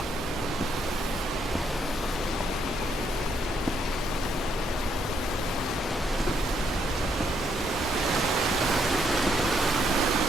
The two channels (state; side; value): normal; both; correlation 0.73